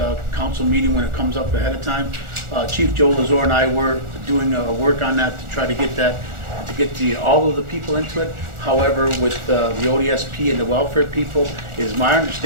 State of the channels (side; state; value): left; late; 1.4 ms